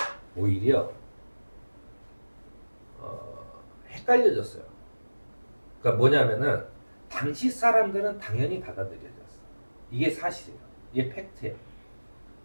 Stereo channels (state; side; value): inverted; both; correlation -1.00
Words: 오히려 헷갈려졌어요. 그러니까 뭐냐면은 당시 사람들은 당연히 받아들여졌어. 이게 사실이에요. 이게 팩트예요.